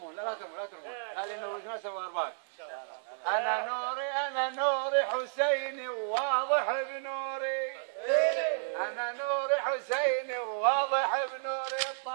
لا ترمون هذه نور ناس وارباك. أنا نوري حسيني وواضح بنوري، أنا نوري حسيني وواضح بنوري.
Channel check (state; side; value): silent; left; digital silence